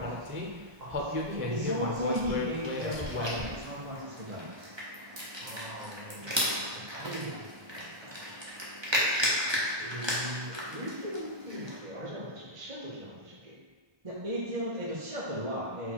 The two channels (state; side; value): late; left; 1.2 ms